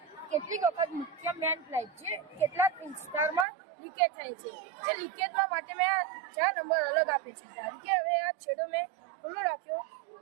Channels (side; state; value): left; drops out; at 3.5 s